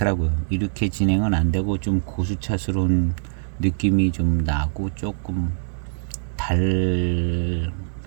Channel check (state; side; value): silent; left; digital silence